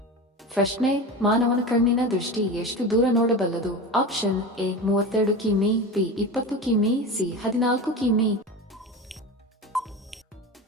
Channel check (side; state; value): both; normal; correlation 0.27